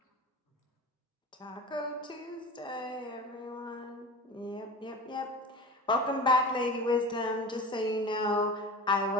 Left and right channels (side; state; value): both; normal; correlation 0.33